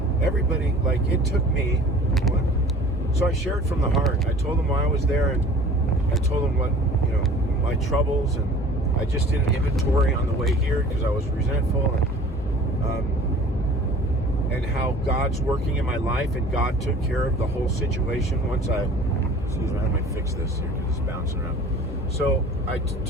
everybody, like, it took me, so I shared from the heart. I told them why I was there, and I told them what, my troubles, and I just did an inventory on the way here because I was resentful, and how God's working in my life, and God took care of the whole situation once I might fix this here because it's bouncing around. So I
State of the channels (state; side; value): normal; both; correlation 0.46